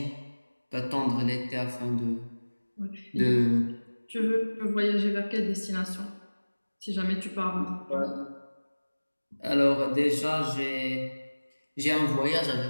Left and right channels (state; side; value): inverted; both; correlation -1.00